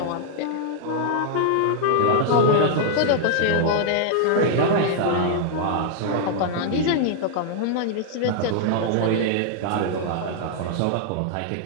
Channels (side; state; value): both; different; correlation -0.01